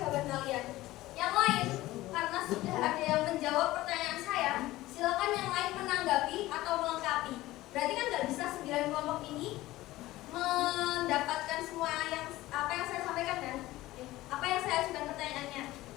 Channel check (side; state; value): right; quieter; 17.2 dB